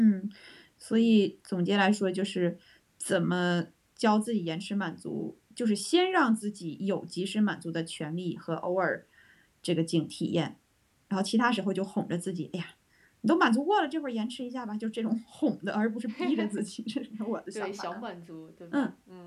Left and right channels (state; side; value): identical; both; correlation 1.00